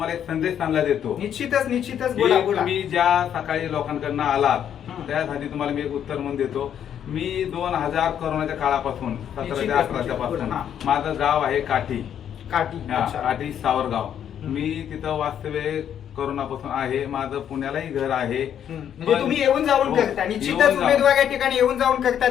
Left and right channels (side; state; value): right; quieter; 9.4 dB